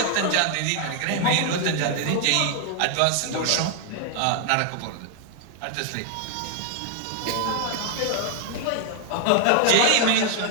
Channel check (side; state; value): both; different; correlation 0.00